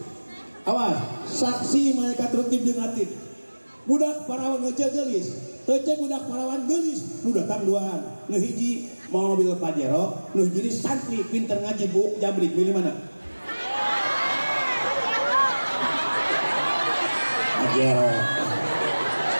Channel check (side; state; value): both; inverted; correlation -1.00